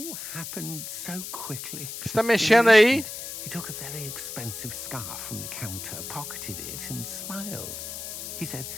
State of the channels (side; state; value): left; noise; hiss, 8 dB below the sound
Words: happened so quickly. você tá In an mexendo aí? instant, he took a very expensive scarf from the counter, pocketed it, and smiled. He said,